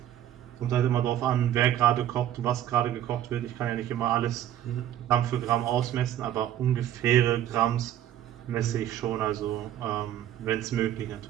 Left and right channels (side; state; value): left; quieter; 11.6 dB